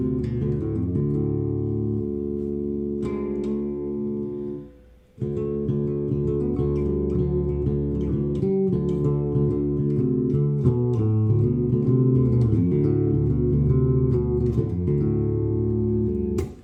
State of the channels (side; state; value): both; identical; correlation 1.00